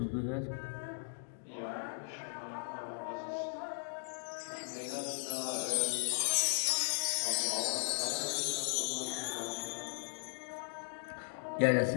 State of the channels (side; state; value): right; silent; digital silence